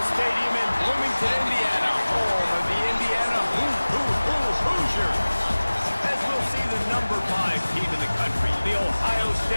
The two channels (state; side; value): inverted; both; correlation -1.00